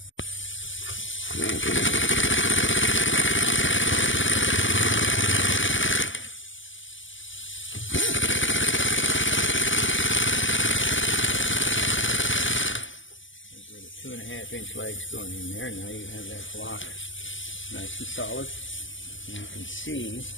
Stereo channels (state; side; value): late; right; 0.56 ms